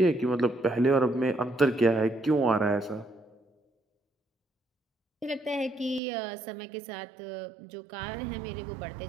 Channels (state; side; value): drops out; left; at 6.0 s